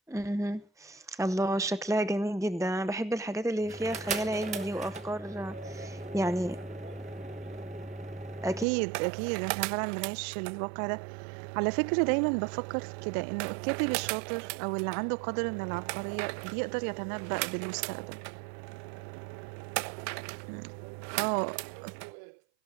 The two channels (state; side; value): drops out; left; at 8.7 s